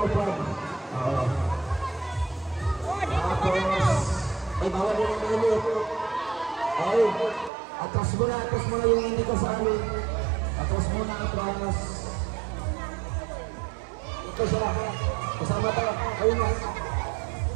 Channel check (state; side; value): drops out; left; at 7.5 s